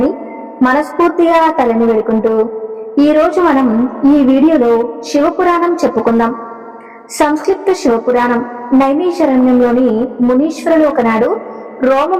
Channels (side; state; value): both; identical; correlation 1.00